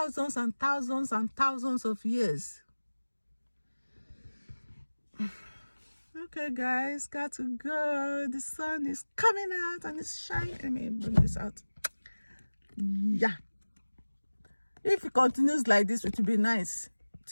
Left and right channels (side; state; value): both; inverted; correlation -1.00